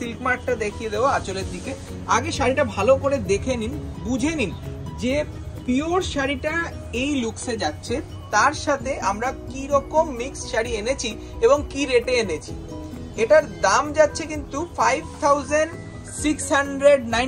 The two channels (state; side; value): identical; both; correlation 1.00